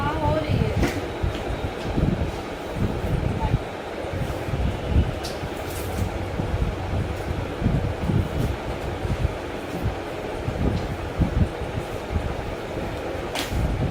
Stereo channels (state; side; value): identical; both; correlation 1.00